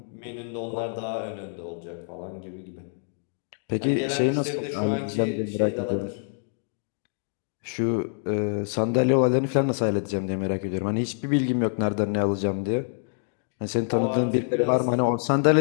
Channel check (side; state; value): right; silent; digital silence